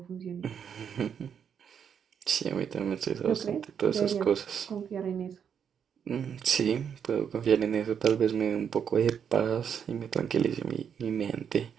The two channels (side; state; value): left; quieter; 7.7 dB